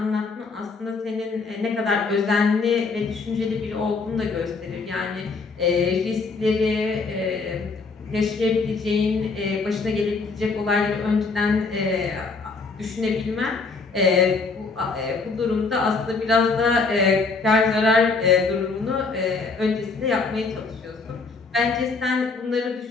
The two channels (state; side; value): quieter; right; 4.3 dB